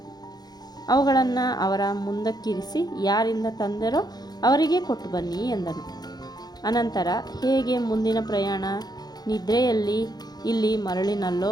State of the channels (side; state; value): right; late; 0.19 ms